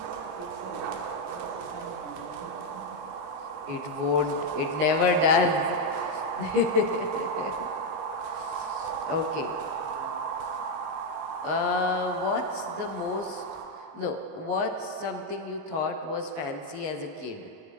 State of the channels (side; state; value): left; late; 19 ms